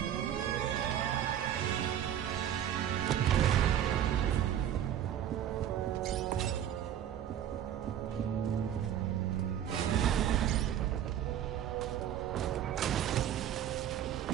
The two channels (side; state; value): left; quieter; 10.4 dB